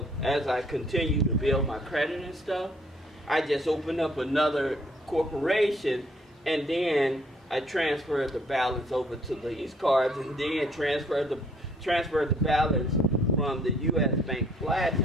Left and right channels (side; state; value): both; normal; correlation 0.63